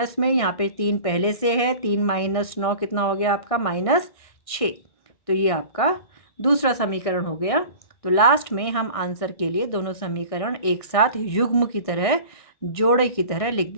में, यहाँ पे 3 पहले से है, 3 माइनस 9 कितना हो गया आपका? माइनस 6। तो ये आपका दूसरा समीकरण हो गया। तो लास्ट में हम आंसर के लिए दोनों समीकरण एक साथ युग्म की तरह, जोड़े की तरह लिख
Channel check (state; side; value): late; right; 1.6 ms